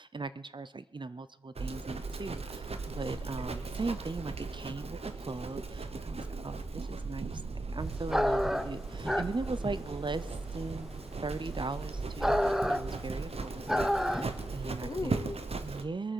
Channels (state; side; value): normal; both; correlation 0.87